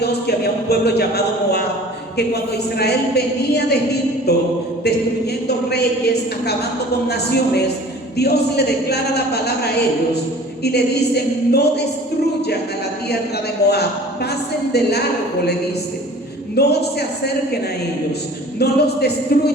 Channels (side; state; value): both; normal; correlation 0.46